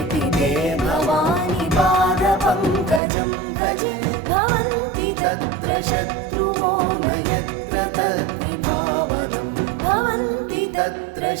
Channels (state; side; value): drops out; left; at 3.0 s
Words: ते भवानि पादपङ्कजं भजे भवन्ति तत्र शत्रुवो न यत्र तद्विभावनं भवन्ति तत्र